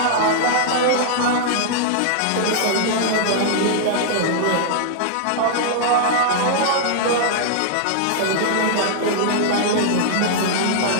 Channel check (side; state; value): both; different; correlation -0.01